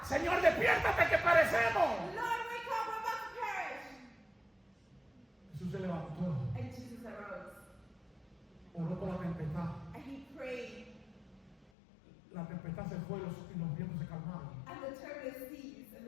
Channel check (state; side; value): drops out; right; at 11.7 s